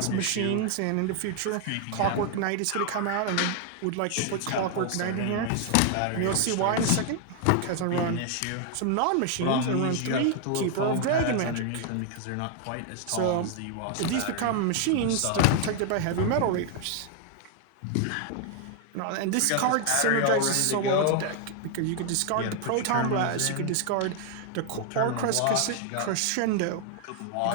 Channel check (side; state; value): both; different; correlation 0.00